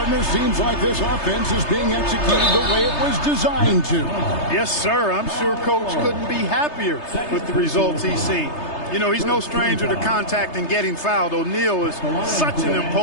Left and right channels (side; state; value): right; late; 3.3 ms